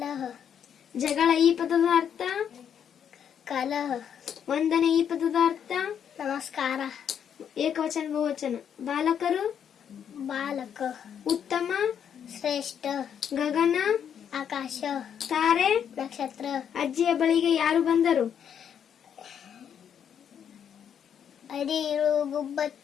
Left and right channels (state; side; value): quieter; right; 8.4 dB